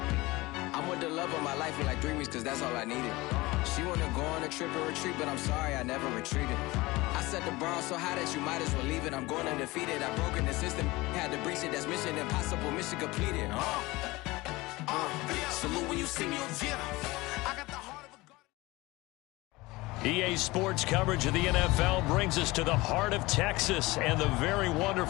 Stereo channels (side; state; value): right; quieter; 21.1 dB